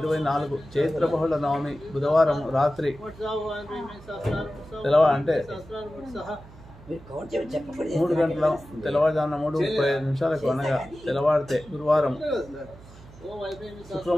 చైత్ర బహుళ నవమి బుధవారం రాత్రి అంటే 3 గంటల తెల్లవారుజామున 3:35 నిమిషాలకు అనగా తెల్లవారితే గురువారం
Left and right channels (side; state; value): right; noise; hum, 20 dB below the sound